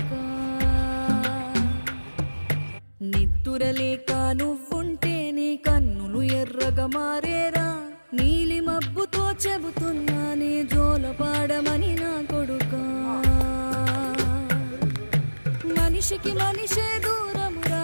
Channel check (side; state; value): both; inverted; correlation -1.00